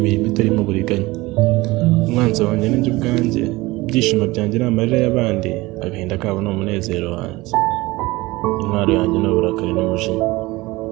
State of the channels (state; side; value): quieter; left; 20.8 dB